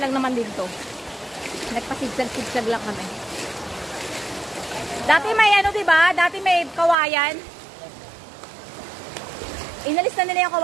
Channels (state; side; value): drops out; left; at 7.0 s